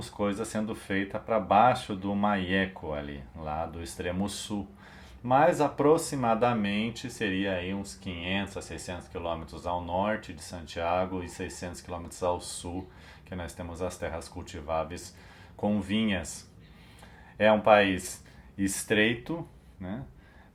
coisa sendo feita para baixo do Maieco, ali, lá do extremo sul. Mas aproximadamente seria aí uns 500 a 600 quilômetros ao norte de Santiago e 600 quilômetros ao sul, que nós temos as terras cultiváveis com vinhas. É um país estreito, né?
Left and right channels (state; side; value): identical; both; correlation 1.00